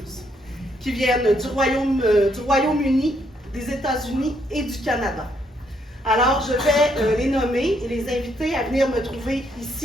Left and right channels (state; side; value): normal; both; correlation 0.73